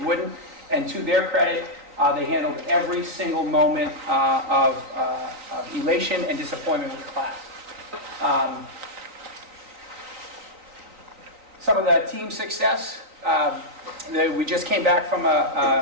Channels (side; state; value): left; late; 3.9 ms